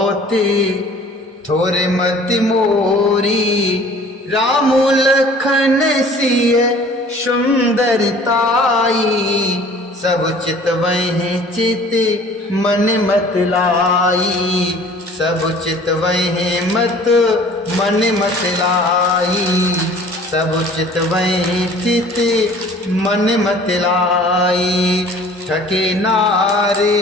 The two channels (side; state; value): both; normal; correlation 0.49